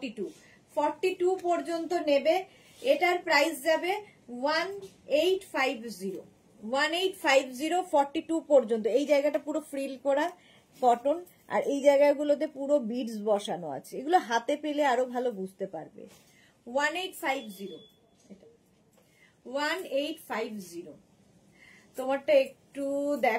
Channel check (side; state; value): both; identical; correlation 1.00